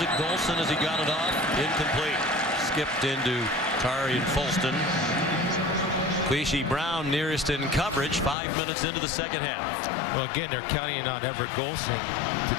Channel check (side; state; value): right; drops out; at 8.3 s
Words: Golson as he got it off. Incomplete. Skipped into Tari and Folston. Queasy Brown nearest in coverage 5 minutes into the second half. Well, again, they're counting on Everett Golson to